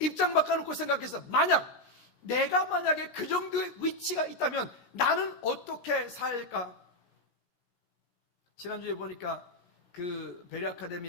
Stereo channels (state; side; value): late; right; 17 ms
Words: 바꿔놓고 생각해서 내가 만약에 그 정도의 위치가 있다면 나는 어떻게 살까? 지난주에 보니까 그 베리